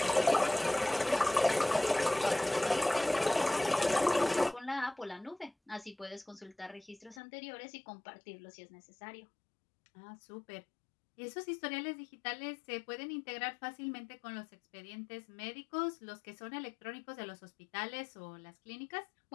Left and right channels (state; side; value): drops out; right; at 7.2 s